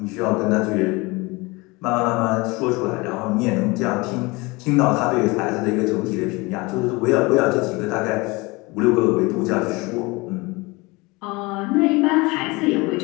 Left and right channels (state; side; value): quieter; right; 24.5 dB